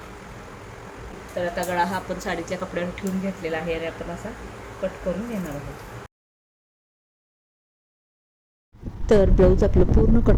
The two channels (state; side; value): identical; both; correlation 1.00